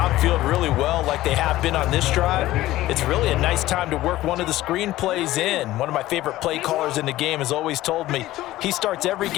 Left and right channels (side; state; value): right; quieter; 16.0 dB